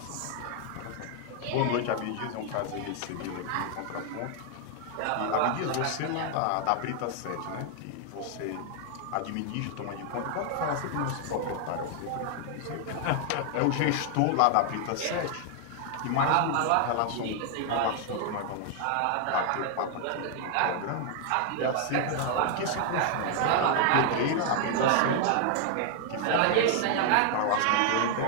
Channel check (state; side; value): different; both; correlation 0.00